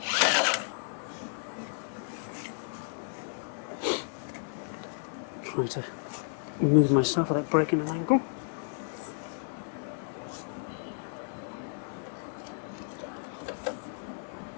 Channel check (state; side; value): silent; right; digital silence